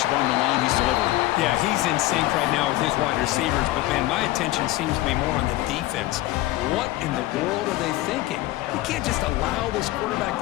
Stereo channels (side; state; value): right; quieter; 17.0 dB